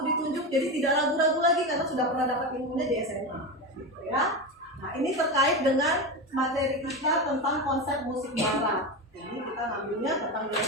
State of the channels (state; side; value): normal; both; correlation 0.19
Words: ditunjuk, jadi tidak ragu-ragu lagi karena sudah pernah dapat ilmunya di SMA, gitu ya. Nah, ini terkait dengan materi kita tentang konsep musik barat. Jadi kita ngambilnya tentang